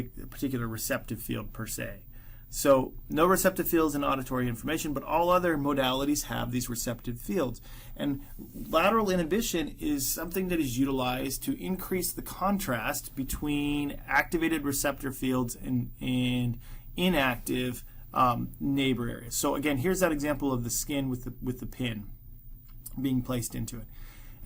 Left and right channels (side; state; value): both; identical; correlation 1.00